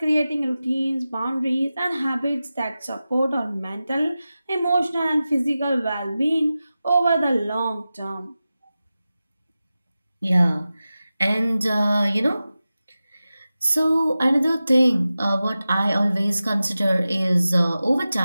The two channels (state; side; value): inverted; both; correlation -0.94